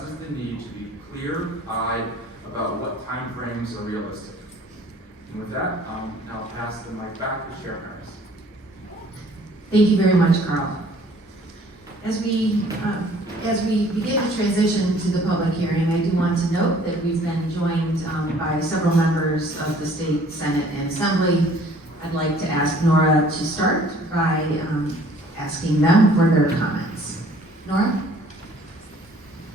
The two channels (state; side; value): normal; both; correlation 0.55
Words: the need to be clear-eyed about what timeframes are realistic. And with that, I'll pass the mic back to Chair Harris. Thank you very much, Carl. As we begin to transition to the public hearing, I do want to note that we've been joined by several members of the State Senate and Assembly. I'd like to ask Nora to start by asking them for their comments. Nora?